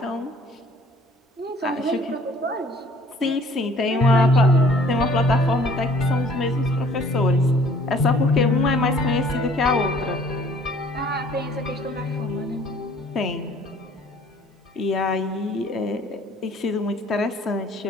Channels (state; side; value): normal; both; correlation 0.55